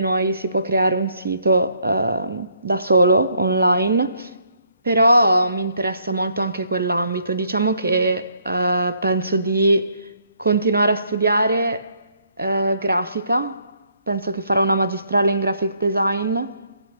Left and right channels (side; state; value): both; inverted; correlation -0.69